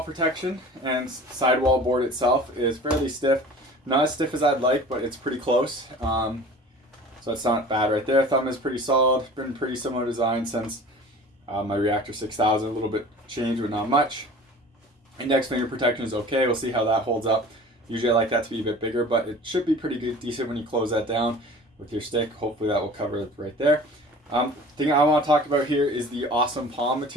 protection, and sidewall board itself is fairly stiff. Not as stiff as I'd like, but it's pretty close. So that's not bad right there. Thumb is pretty solid. Been pretty similar design since my Reactor 6000. A little bit changed, but not much. Index finger protection is okay. We'll see how that holds up. Usually I like that to be a bit bigger, but it should be pretty good, decent when you close that down with your stick. Hopefully that will cover it right there. Thing I want to talk about here is the awesome palm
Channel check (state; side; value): normal; both; correlation 0.42